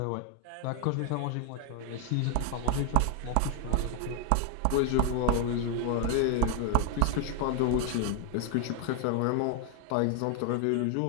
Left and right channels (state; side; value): different; both; correlation 0.00